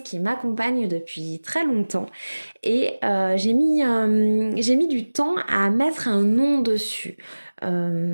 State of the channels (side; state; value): both; inverted; correlation -1.00